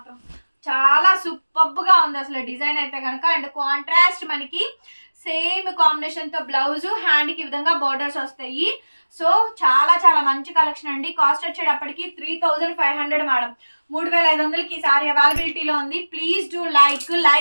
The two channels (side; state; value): both; inverted; correlation -1.00